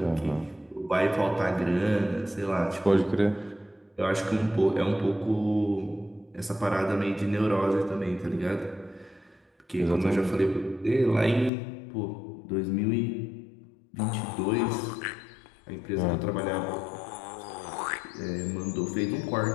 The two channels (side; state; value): right; drops out; at 11.5 s